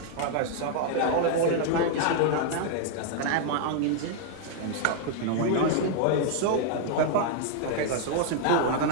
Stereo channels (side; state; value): both; different; correlation 0.00